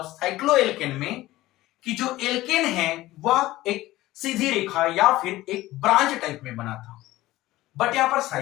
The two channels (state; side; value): quieter; right; 17.0 dB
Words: साइक्लोएल्केन में कि जो एल्केन है वह एक सीधी रेखा या फिर एक ब्रांच टाइप में बना था, बट यहां पर